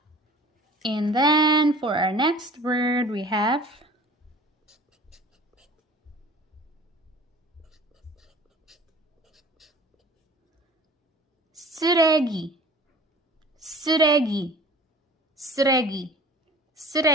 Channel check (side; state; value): both; normal; correlation 0.45